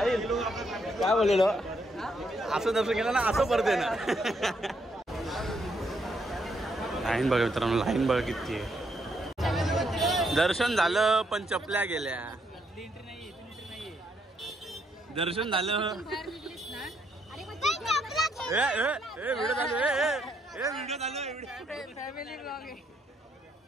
काय बोललेलो? असं दर्शन केलं ना असं परत आहे ना. लाईन बघा मित्रांनो, लाईन बघा किती आहे. दर्शन झालं पण चपल्या गेल्या. दर्शन झालं. व्हिडिओ चालू व्हिडिओ चालू फॅमिली ब्लॉग आहे.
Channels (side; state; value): both; normal; correlation 0.75